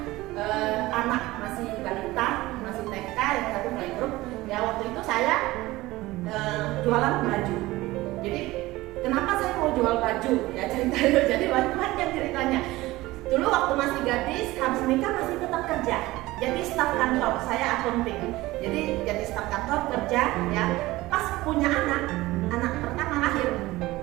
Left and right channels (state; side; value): quieter; left; 18.8 dB